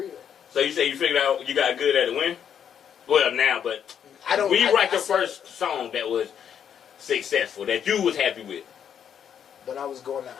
So you say you figured out you got good at it when? Well, now, but when you write your first song that was successful, that you was happy with? When I was going to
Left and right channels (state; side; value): quieter; right; 8.5 dB